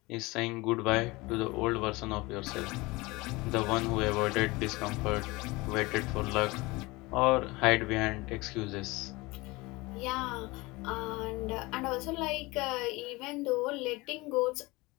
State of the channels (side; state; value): right; quieter; 22.9 dB